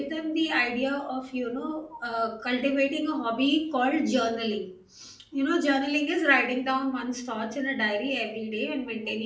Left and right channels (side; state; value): both; identical; correlation 1.00